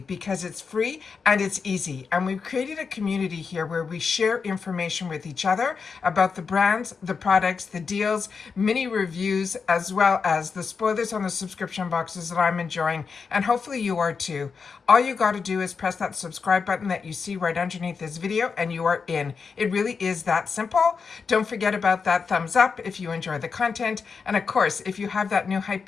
because it's free and it's easy. And we've created a community here where we share information with each other about the brands, the products, the deals, mini reviews, as well as the spoilers on the subscription boxes that I'm enjoying, and hopefully you are too. All you got to do is press that subscribe button that you see right underneath this video and you are in. It really is that simple. Don't forget about that thumbs up if you enjoy the content. And of course, if you have that new hype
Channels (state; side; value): quieter; right; 5.4 dB